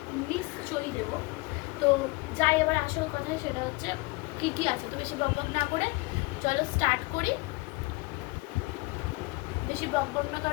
নিশ্চয়ই দেবো। তো যাই এবার আসল কথা, সেটা হচ্ছে কী কী আছে। তো বেশি বক না করে চলো স্টার্ট করি। বেশি বক না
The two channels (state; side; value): quieter; right; 24.8 dB